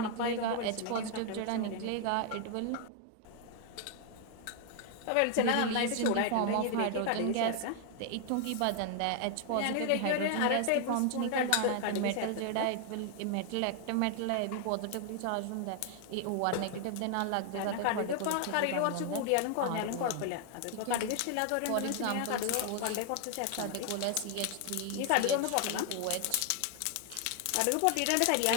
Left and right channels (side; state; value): both; different; correlation 0.00